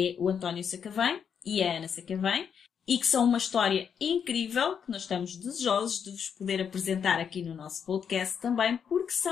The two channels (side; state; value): right; quieter; 7.4 dB